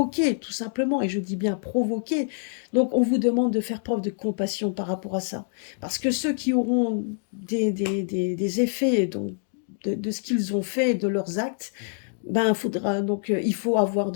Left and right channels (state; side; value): silent; right; 61 dB below the other